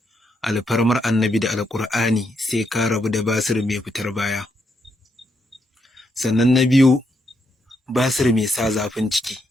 Alfarmar Annabi da Alƙur'ani sai ka rabu da basir mai fitar baya. Sannan na biyu, basir mai sa zafin ciki.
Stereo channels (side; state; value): both; normal; correlation 0.79